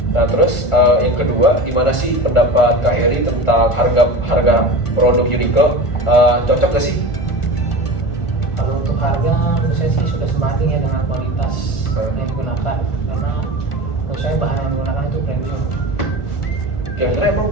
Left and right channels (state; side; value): late; right; 1.4 ms